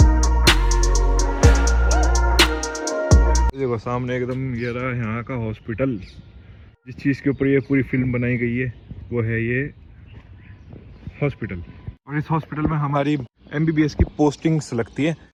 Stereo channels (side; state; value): both; identical; correlation 1.00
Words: देखो सामने एकदम ये रहा यहाँ का हॉस्पिटल। जिस चीज़ के ऊपर ये पूरी फिल्म बनाई गई है वो है ये हॉस्पिटल। और इस हॉस्पिटल में हमारी MBBS की पोस्टिंग्स लगती है।